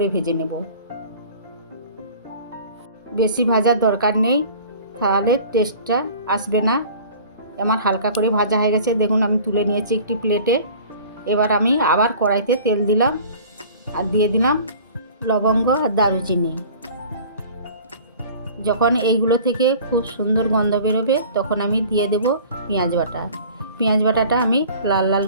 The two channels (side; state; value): both; inverted; correlation -0.45